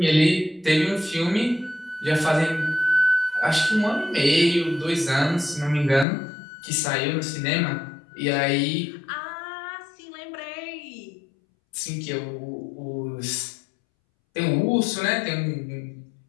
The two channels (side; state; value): right; drops out; at 6.1 s